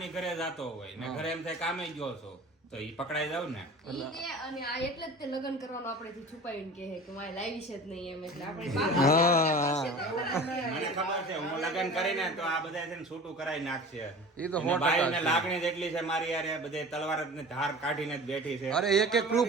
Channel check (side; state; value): both; normal; correlation 0.39